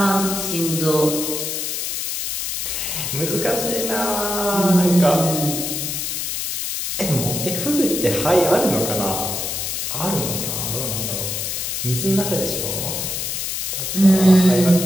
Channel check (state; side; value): noise; left; hiss, 3 dB below the sound